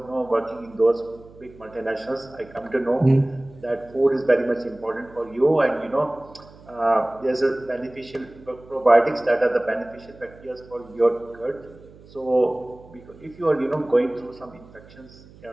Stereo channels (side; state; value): right; noise; hum, 22 dB below the sound